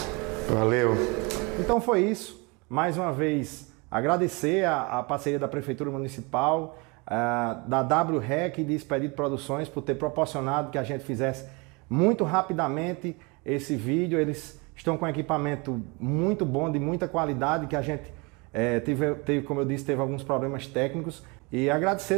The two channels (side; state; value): left; quieter; 28.8 dB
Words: Valeu. Então foi isso. Mais uma vez, agradecer a parceria da Prefeitura Municipal, da WREC e de Expedito Produções por ter proporcionado que a gente fizesse muito rapidamente esse vídeo. Eles estão com equipamento muito bom, de muita qualidade, que a gente teve, como eu disse, teve alguns problemas técnicos. E agradecer